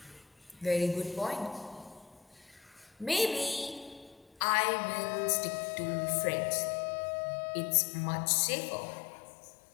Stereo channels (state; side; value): drops out; right; at 4.4 s